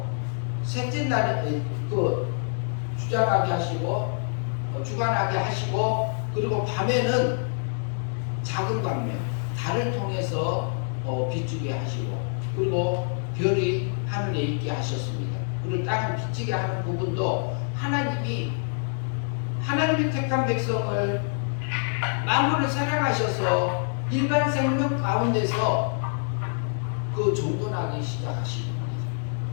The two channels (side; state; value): right; silent; digital silence